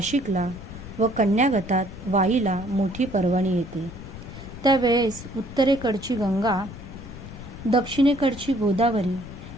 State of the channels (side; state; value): left; noise; rumble, 13 dB below the sound